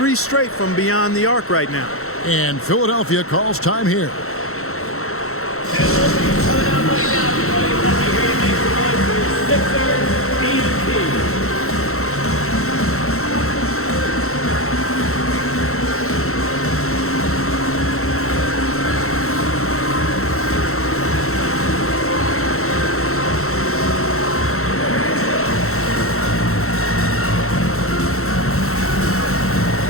straight from beyond the arc right now. And Philadelphia calls time here.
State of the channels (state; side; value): late; right; 0.63 ms